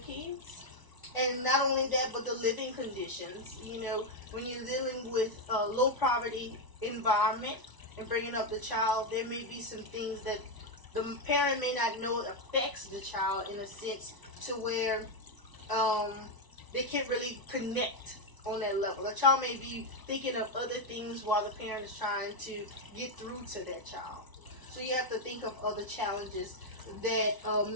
kids. And not only that, but the living conditions. When you're dealing with a low poverty environment and bringing up the child, there may be some things that the parent may not know affects the child in a sense to where they can't really connect on that level. A child may be thinking of other things while the parent is trying to get through to that child. So you have to think of other challenges that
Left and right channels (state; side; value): late; right; 1.0 ms